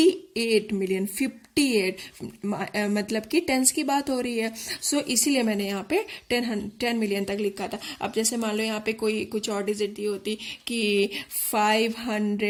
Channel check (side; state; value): both; identical; correlation 1.00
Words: मिलियन, 58 मतलब कि टेंस की बात हो रही है। सो इसीलिए मैंने यहाँ पे 10 मिलियन तक लिखा था। अब जैसे मान लो यहाँ पे कोई कुछ और डिजिट दी होती कि